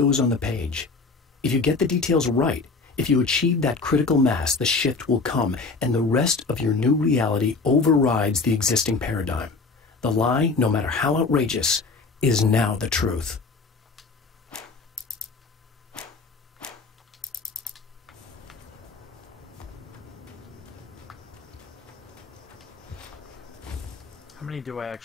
on the page. If you get the details right, if you achieve that critical mass, the shift will come, and the rest of your new reality overrides the existing paradigm. The lie, no matter how outrageous, is now the truth. How many do I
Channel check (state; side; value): quieter; right; 4.1 dB